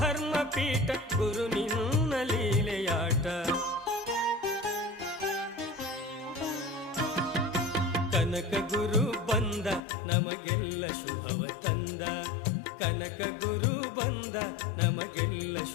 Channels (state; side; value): drops out; right; at 9.8 s